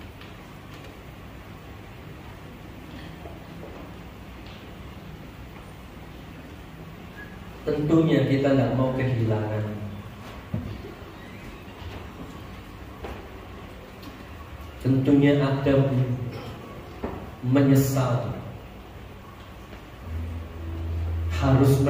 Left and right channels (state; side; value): identical; both; correlation 1.00